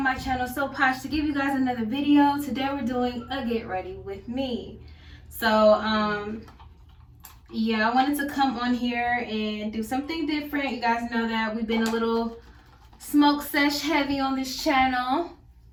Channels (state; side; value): identical; both; correlation 1.00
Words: my channel, So Posh, to give you guys another video. Today we're doing a get ready with me. So yeah, I wanted to come on here and do something different. You guys know that we've been a little smoke sesh heavy on this channel,